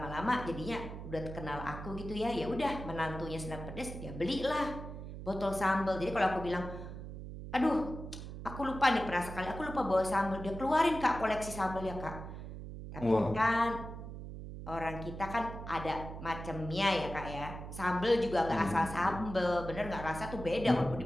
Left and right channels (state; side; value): noise; right; hum, 9 dB below the sound